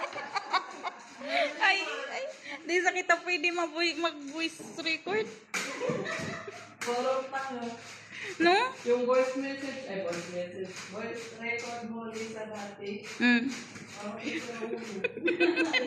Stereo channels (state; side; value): identical; both; correlation 1.00